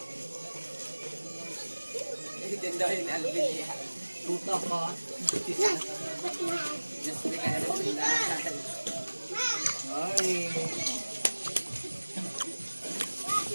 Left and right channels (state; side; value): inverted; both; correlation -1.00